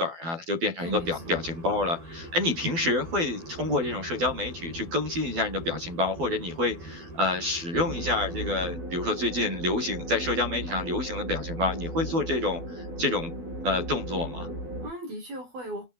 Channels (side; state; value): left; late; 12 ms